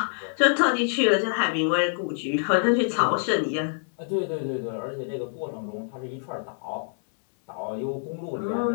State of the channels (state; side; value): silent; right; 61 dB below the other